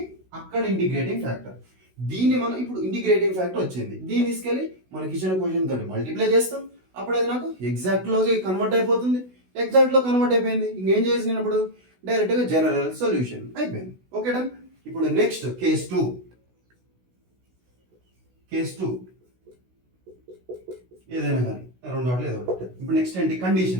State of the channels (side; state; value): left; late; 16 ms